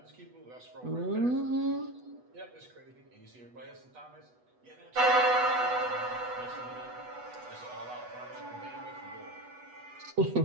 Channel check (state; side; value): late; left; 8.1 ms